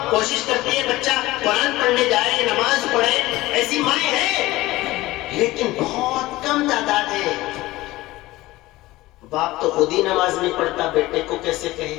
کوشش کرتی ہے بچہ قرآن پڑھنے جائے, نماز پڑھے, ایسی مائیں ہیں, لیکن بہت کم تعداد ہے. باپ تو خود ہی نماز نہیں پڑھتا, بیٹے کو کیسے کہے؟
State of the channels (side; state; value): right; quieter; 18.3 dB